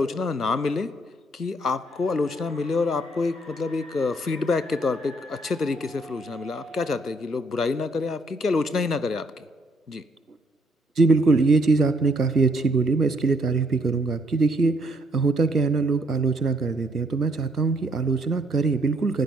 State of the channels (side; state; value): both; normal; correlation 0.69